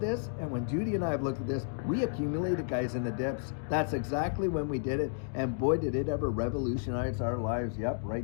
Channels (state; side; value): silent; right; digital silence